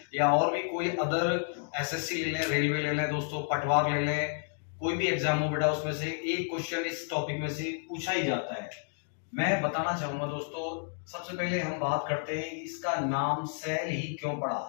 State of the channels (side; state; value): right; silent; 57 dB below the other